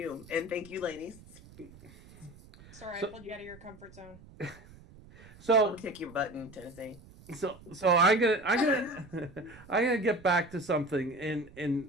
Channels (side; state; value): right; noise; rumble, 21 dB below the sound